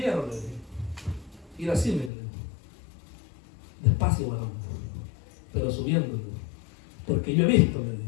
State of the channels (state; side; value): drops out; right; at 2.1 s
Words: le dije, ir así, me dijo, despacio, varón, pero subiendo, le dije, porque yo he visto, le dije,